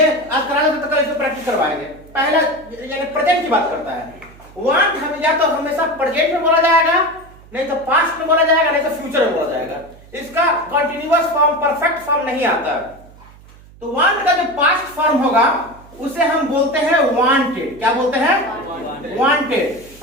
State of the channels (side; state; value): right; noise; hum, 23 dB below the sound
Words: आज करा तो कल इसको प्रैक्टिस करवाएंगे। पहला यानी प्रेजेंट की बात करता है। वांट हम या तो हमेशा प्रेजेंट में बोला जाएगा, नहीं तो पास्ट में बोला जाएगा, नहीं तो फ्यूचर में बोला जाएगा। इसका कंटीन्यूअस फॉर्म, परफेक्ट फॉर्म नहीं आता। तो वांट का जो पास्ट फॉर्म होगा उसे हम बोलते हैं वांटेड। क्या बोलते हैं? वांटेड।